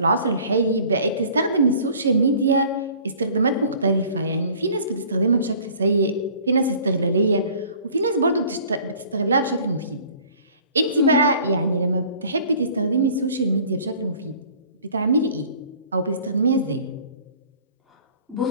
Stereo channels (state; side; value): inverted; both; correlation -0.51